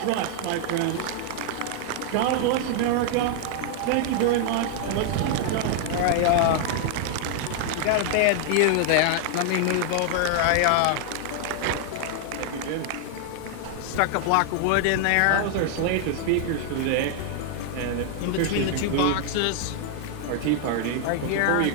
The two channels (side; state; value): both; different; correlation 0.00